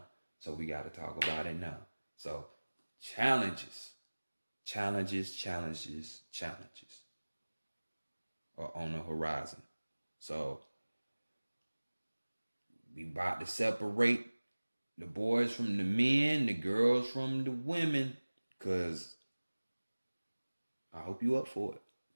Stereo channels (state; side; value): inverted; both; correlation -1.00